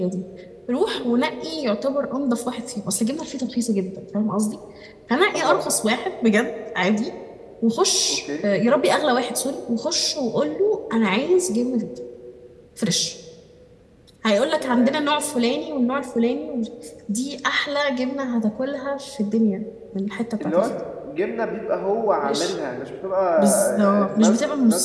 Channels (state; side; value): identical; both; correlation 1.00